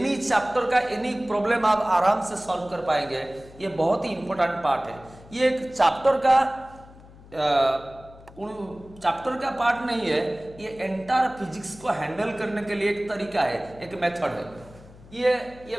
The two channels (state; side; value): noise; left; hum, 21 dB below the sound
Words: चैप्टर का एनी प्रॉब्लम आप आराम से सॉल्व कर पाएंगे। ये बहुत ही इंपॉर्टेंट पार्ट है। ये एक चैप्टर का पार्ट नहीं है, ये एंटायर फिजिक्स को हैंडल करने के लिए एक तरीका है, एक मेथड है। ये